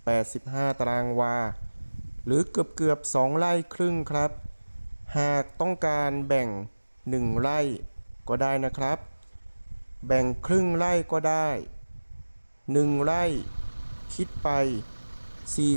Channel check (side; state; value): both; inverted; correlation -1.00